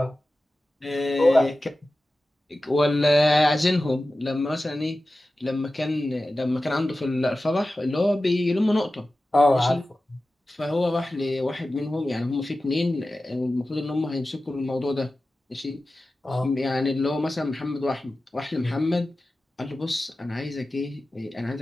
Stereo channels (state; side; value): normal; both; correlation 0.95